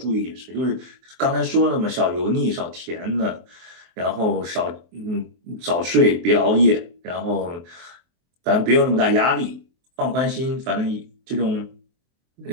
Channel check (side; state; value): left; late; 23 ms